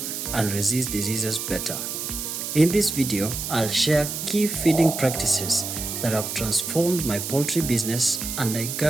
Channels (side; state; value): right; noise; hiss, 5 dB below the sound